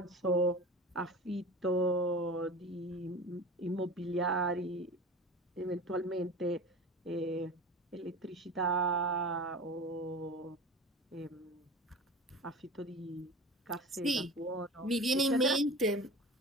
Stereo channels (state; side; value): normal; both; correlation 0.35